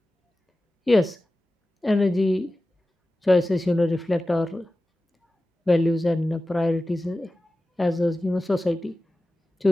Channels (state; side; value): normal; both; correlation 0.95